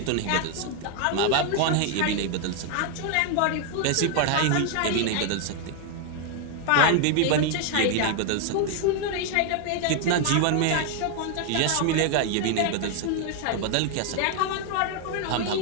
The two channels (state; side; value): different; both; correlation 0.01